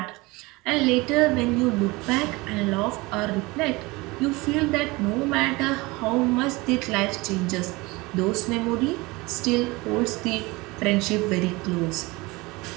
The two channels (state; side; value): quieter; left; 23.1 dB